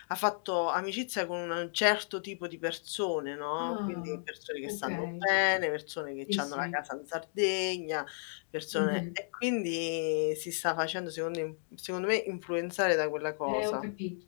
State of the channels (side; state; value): right; silent; digital silence